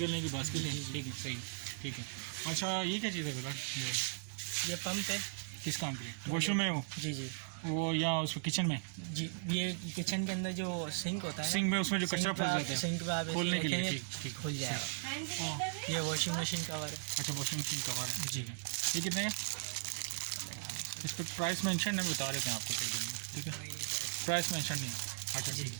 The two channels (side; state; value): left; silent; digital silence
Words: की बास्केट है। ठीक है सही। ठीक है। अच्छा ये क्या चीज़ है बिलाल? ये पंप है। किस काम के लिए? वॉशरूम में वो? जी जी वो या उस किचन में? जी। ये किचन के अंदर जो सिंक होता है, सिंक में उसमें जो कचरा फंस जाता है सिंक पे आप ऐसे खोलने के लिए। रखेंगे, ठीक ठीक खुल जाएगा। हैंड ग्राइंडर है? ये वॉशिंग मशीन कवर है। अच्छा वॉशिंग मशीन कवर है। ठीक है। ये कितने का? इस पर प्राइस मेंशन नहीं बता रहे थे आपको। ठीक है प्राइस मेंशन नहीं। अच्छा ठीक